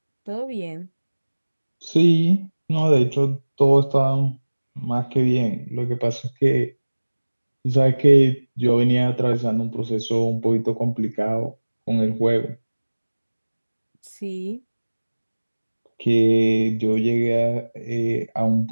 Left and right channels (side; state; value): both; inverted; correlation -1.00